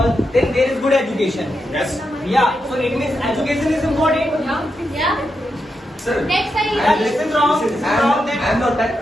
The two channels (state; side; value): normal; both; correlation 0.86